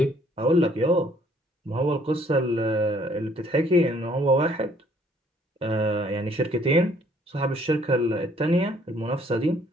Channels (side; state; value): both; normal; correlation 0.62